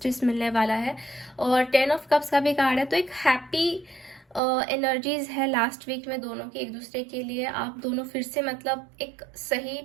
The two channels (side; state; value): left; drops out; at 4.4 s